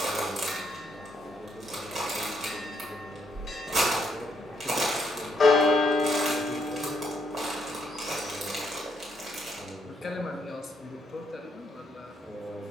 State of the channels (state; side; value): normal; both; correlation 0.74